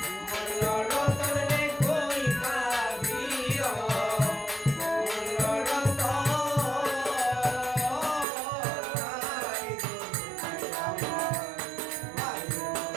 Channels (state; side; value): drops out; left; at 8.2 s